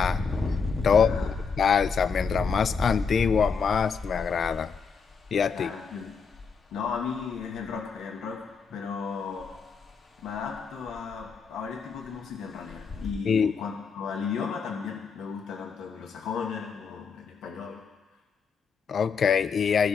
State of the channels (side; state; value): right; quieter; 5.8 dB